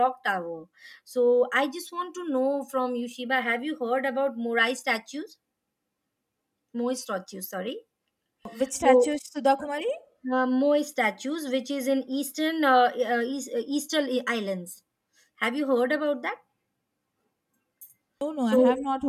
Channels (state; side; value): identical; both; correlation 1.00